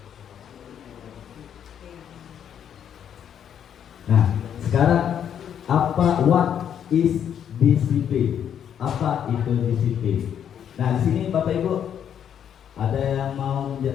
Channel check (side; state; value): right; quieter; 9.0 dB